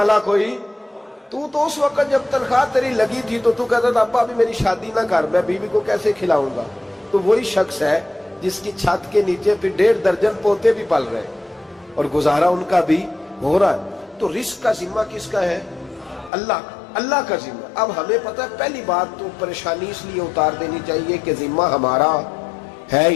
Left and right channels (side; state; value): right; drops out; at 16.3 s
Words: کوئی تو اس وقت جب تنخواہ تیری لگی تھی تو کہتا تھا ابا ابھی میری شادی نہ کر، میں بیوی کو کیسے کھلاؤں گا؟ تو وہی شخص ہے جس کی چھت کے نیچے پھر 1.5 درجن پوتے بھی پل رہے اور گزارا ان کا بھی ہو رہا ہے۔ تو رزق کا ذمہ کس کا ہے؟ اللہ کا ذمہ۔ اب ہمیں پتہ ہے پہلی بات تو پریشانی اس لیے اتار دینی چاہیے کہ ذمہ ہمارا ہے